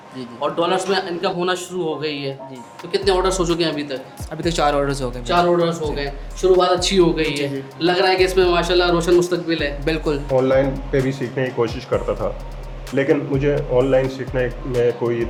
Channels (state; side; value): identical; both; correlation 1.00